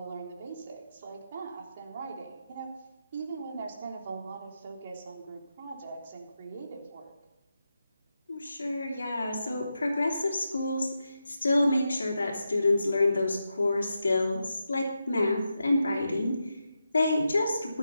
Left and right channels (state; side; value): inverted; both; correlation -0.88